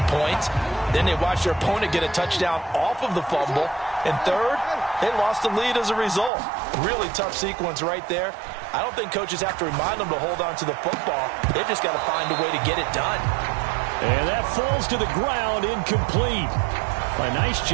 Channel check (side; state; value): left; drops out; at 6.3 s